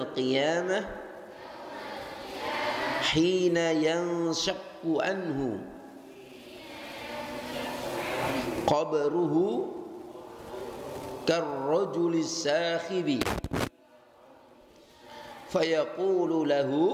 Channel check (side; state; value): both; identical; correlation 1.00